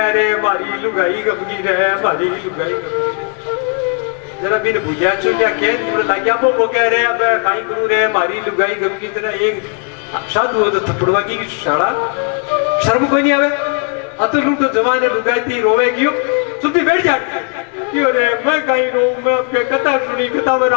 रहे हमारी लुगाई गमगी रहे, हमारी लुगाई जरा बिन भूलिया चुकिया केंद्र लागिया वो कह रहे अब काई करू रे हमारी लुगाई गमगी, जरा एक साधु हो तो थपड़वा की शाला शर्म कोई नहीं आवे, अतुल तो जमाने लुगाई रोवे क्यों, चुप्पी बैठ जाती क्यों रे, मैं कहीं रो, मैं आपके कथा सुनी, कथा में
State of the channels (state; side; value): quieter; right; 35.1 dB